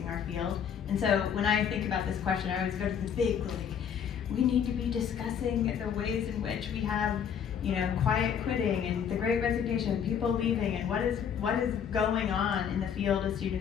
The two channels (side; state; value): right; quieter; 7.9 dB